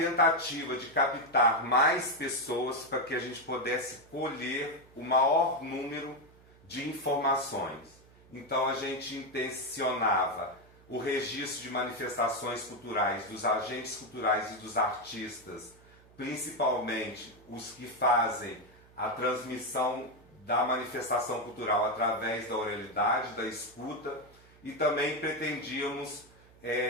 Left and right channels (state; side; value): noise; right; hum, 26 dB below the sound